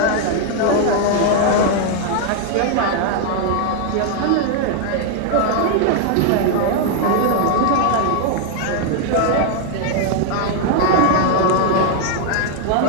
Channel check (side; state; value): both; different; correlation 0.00